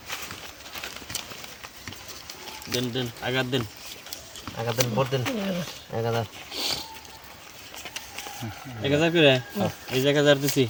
দেন দেন আগার দেন ভোট দেন 1000 করে এই যে 1000 দিছি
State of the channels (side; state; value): both; identical; correlation 1.00